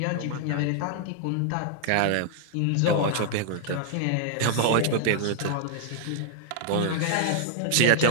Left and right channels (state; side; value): different; both; correlation -0.01